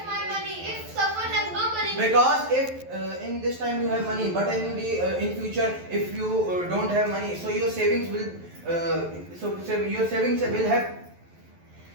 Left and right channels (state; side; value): late; left; 11 ms